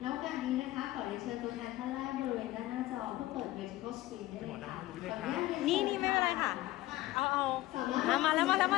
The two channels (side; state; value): right; quieter; 16.7 dB